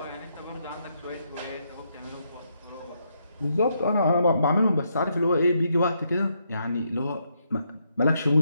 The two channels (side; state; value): both; inverted; correlation -0.78